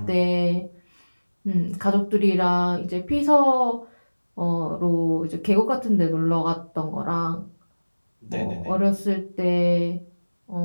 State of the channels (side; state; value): both; inverted; correlation -1.00